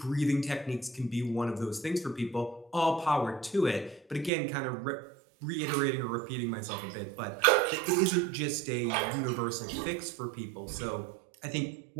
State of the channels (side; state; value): left; drops out; at 4.3 s